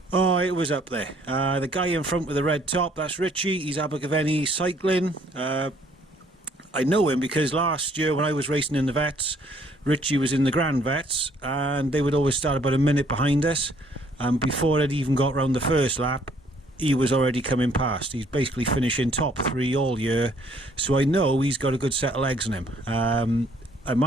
was up there. The guy in front with the red top, that's Richie. He's Abergavenny Cycling. I know him because last year when I was racing in the Vets, Richie was in the Grand Vets, and they would always start about a minute behind us. And before it even got round the first lap, he was already coming past. He's basically finishing top 3 all year, so I know he's got a good set of legs in him. And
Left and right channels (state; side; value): normal; both; correlation 0.63